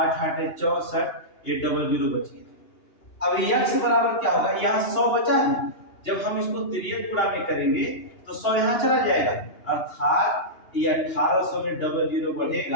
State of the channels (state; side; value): late; right; 2.8 ms